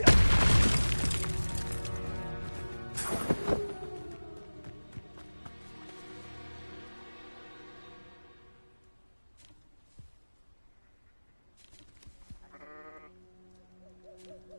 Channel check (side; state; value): both; inverted; correlation -1.00